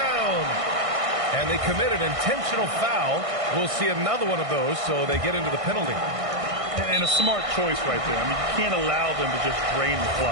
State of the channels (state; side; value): late; left; 1.6 ms